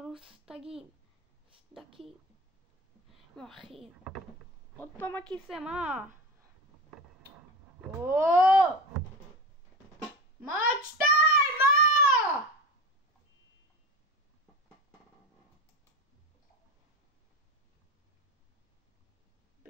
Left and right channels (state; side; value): normal; both; correlation 0.25